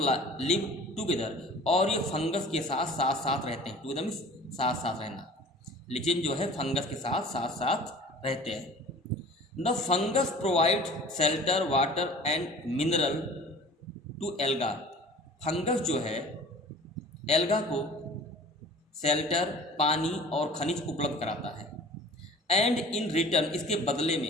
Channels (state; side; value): normal; both; correlation 0.44